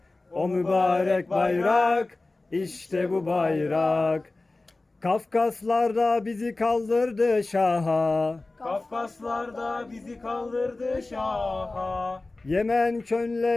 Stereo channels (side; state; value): right; quieter; 3.2 dB